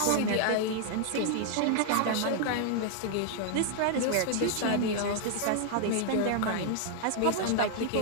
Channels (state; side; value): different; both; correlation -0.01